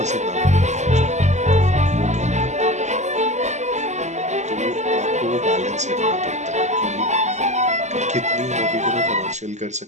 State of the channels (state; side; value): late; left; 0.33 ms